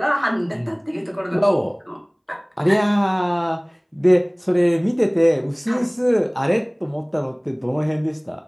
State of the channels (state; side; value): identical; both; correlation 1.00